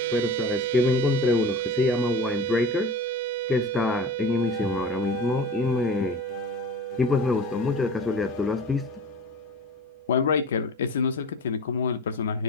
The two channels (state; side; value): normal; both; correlation 0.36